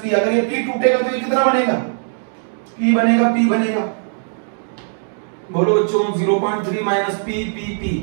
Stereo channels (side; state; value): left; silent; digital silence